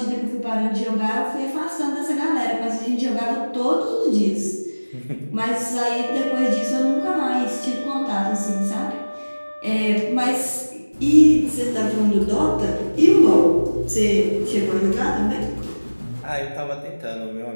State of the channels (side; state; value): both; inverted; correlation -1.00